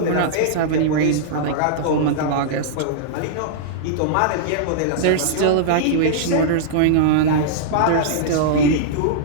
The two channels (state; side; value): different; both; correlation -0.02